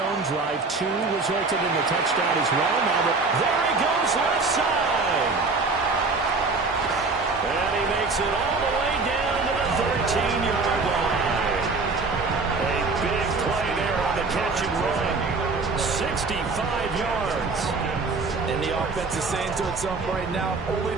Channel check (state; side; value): quieter; left; 3.9 dB